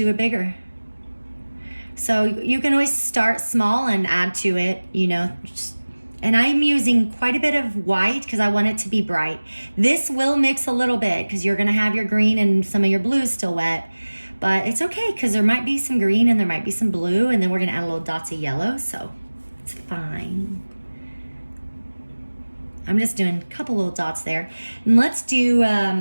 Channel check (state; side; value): inverted; both; correlation -1.00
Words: it bigger. So you can always start small and add to it, you know. And I'm using quite a bit of white because I want it to be bright. This will mix a little bit because you're gonna have your green and some of your blue still wet. But it's okay because there might be some green and there might be some blue, and then we're gonna add a little dots of yellow, so it's fine. I'm just doing a couple little dots there. And let's do